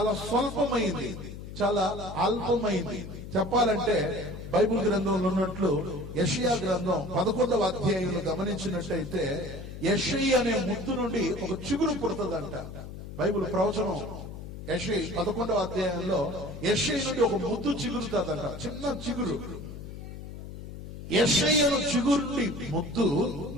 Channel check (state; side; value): noise; left; hum, 11 dB below the sound